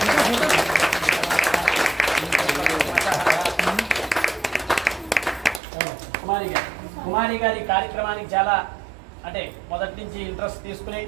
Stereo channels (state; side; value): drops out; left; at 5.6 s